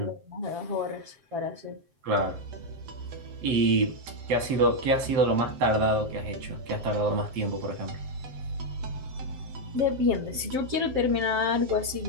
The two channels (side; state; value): left; late; 7.7 ms